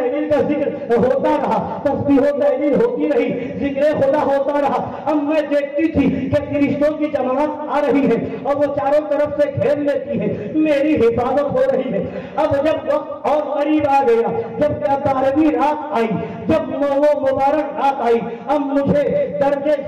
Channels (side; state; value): both; identical; correlation 1.00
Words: کا ذکر ہوتا رہا، تسبیح و تحلیل ہوتی رہی، ذکر خدا ہوتا رہا۔ اب میں دیکھتی تھی کہ فرشتوں کی جماعت آ رہی ہے اور وہ چاروں طرف سے گھیر لیتی ہے، میری حفاظت ہو رہی ہے۔ اب جب وقت اور قریب آ گیا، جب 12ویں رات آئی، جب وہ مبارک رات آئی، اب مجھے درد